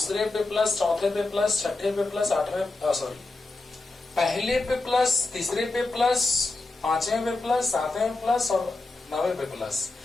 पे प्लस, चौथे पे प्लस, छठे पे प्लस, आठवें सॉरी पहले पे प्लस, तीसरे पे प्लस, पांचवें पे प्लस, सातवें पे प्लस और नौवें पे प्लस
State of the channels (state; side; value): quieter; right; 3.2 dB